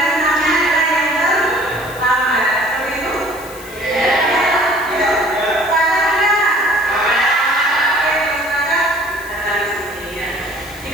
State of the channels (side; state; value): left; noise; hiss, 18 dB below the sound